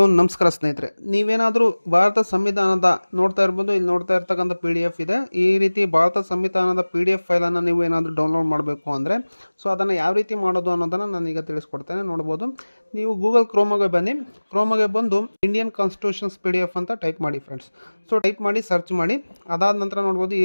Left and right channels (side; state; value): both; inverted; correlation -1.00